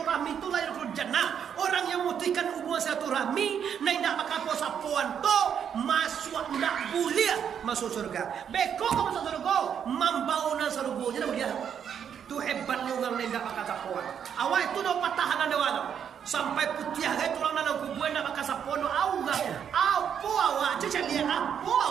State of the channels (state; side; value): quieter; left; 8.2 dB